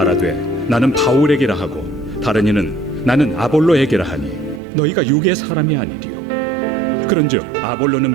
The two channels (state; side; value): drops out; left; at 4.6 s